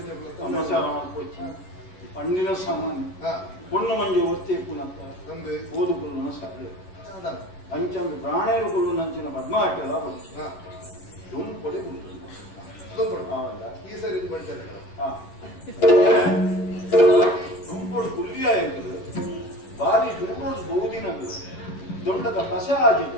ಜೊಗುಳ್ಳೆ ಪಣ್ಣಿನ ಸಾಮಾನ್ಯ பொண்ணு ಮಂಜು ಒತ್ತಿ ಪುನಪ್ಪ ತಂದೆ ಓದುಗುಳ್ಳು ಸರಳ ಅಂಚಂದು ಪ್ರಾಣೇರು ಗುಳ್ಳು ನಂಚಿನ ಪದ್ಮಾಟೆಲ್ಲ ದುಂಪೊಡೆ ಗುಳ್ಳು ಈ ಸರಿ ಬಂಟೆ ದುಂಪೊಡು ಗುಳ್ಳಿಯ ಎಂಬುದು ಬಾರಿ ದೂರೋದು ಬಹುದಿನದು ದೊಡ್ಡದ ಕಸ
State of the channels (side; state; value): right; late; 10 ms